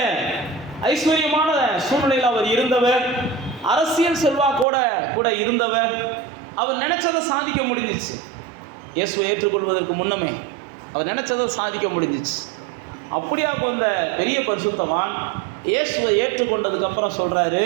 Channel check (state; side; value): drops out; left; at 4.7 s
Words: ஐஸ்வர்யமான சூழ்நிலையில் அவர் இருந்தவர், அரசியல் செல்வாக்கோட கூட இருந்தவர். அவர் நினைச்சதை சாதிக்க முடிஞ்சிச்சு. இயேசுவை ஏற்றுக்கொள்வதற்கு முன்னமே அவர் நினைச்சதை சாதிக்க முடிஞ்சிச்சு. அப்படியா வந்த பெரிய பரிசுத்தவான் இயேசுவை ஏற்றுக்கொண்டதுக்கப்புறம் சொல்கிறாரு,